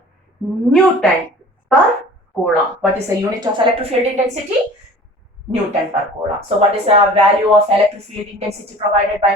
Newton per coulomb. What is the unit of electric field intensity? Newton per coulomb. So what is the value of electric field intensity provided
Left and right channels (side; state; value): both; normal; correlation 0.44